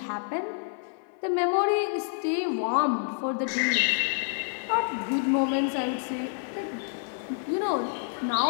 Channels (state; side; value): silent; right; 59 dB below the other